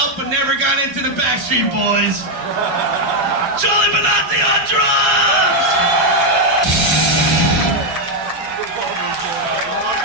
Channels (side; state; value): left; late; 7.5 ms